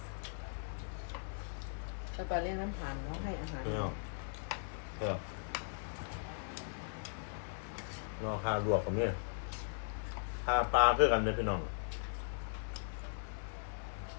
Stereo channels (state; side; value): silent; right; digital silence